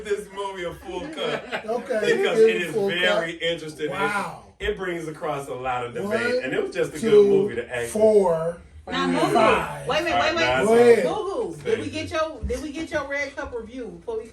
this movie a full cut Okay. because give it a is full very cup. interesting. Wow. It brings across a lot of debate, 1, and it was just a 2, good movie to act. 4, Now, Moo. 5. Wait a minute. Alright, Go ahead. Moo. Did we get your red cup review before we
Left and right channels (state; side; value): identical; both; correlation 1.00